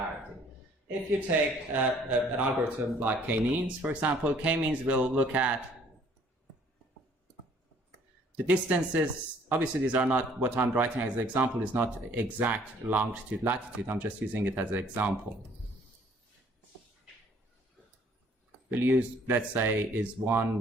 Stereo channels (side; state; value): both; normal; correlation 0.59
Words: If you take an algorithm like k-means, for example, k-means will look at the distances. Obviously, these are not, what I'm writing as an example is not exact longitude, latitude. I'm just using it as an example. We'll use, let's say, is